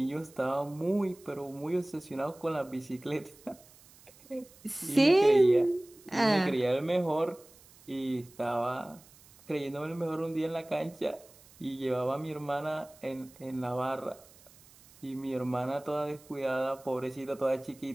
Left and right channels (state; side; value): noise; right; hiss, 25 dB below the sound